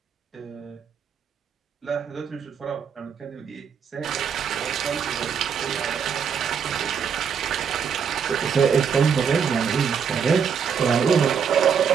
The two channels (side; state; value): left; quieter; 7.0 dB